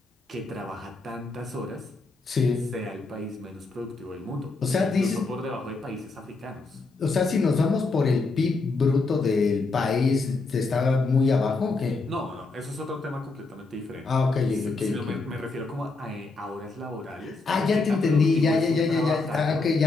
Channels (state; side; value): quieter; right; 3.7 dB